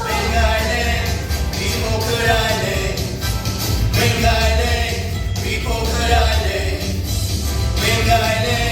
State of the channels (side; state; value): both; identical; correlation 1.00